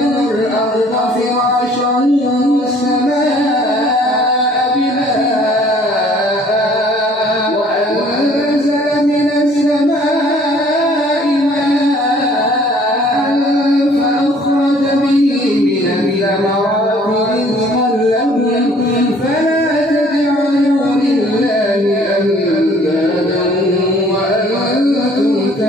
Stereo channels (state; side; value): normal; both; correlation 0.57